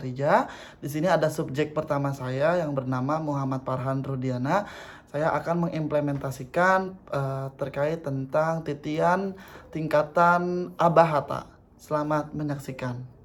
Di sini ada subjek pertama saya yang bernama Muhammad Farhan Rudiana. Saya akan mengimplementasikan terkait tentang titian tingkatan abahata. Selamat menyaksikan.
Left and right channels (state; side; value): identical; both; correlation 1.00